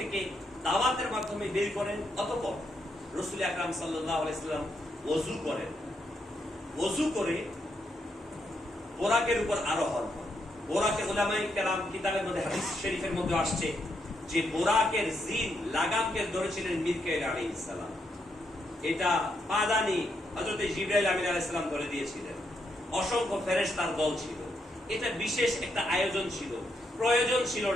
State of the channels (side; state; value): both; normal; correlation 0.79